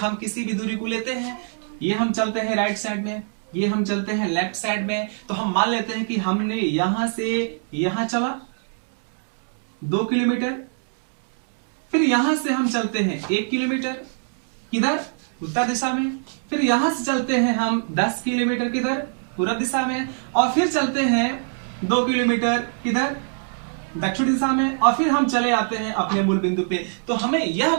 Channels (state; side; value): silent; left; digital silence